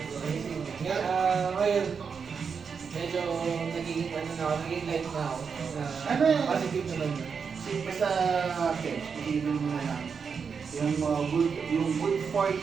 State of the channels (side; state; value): left; quieter; 6.0 dB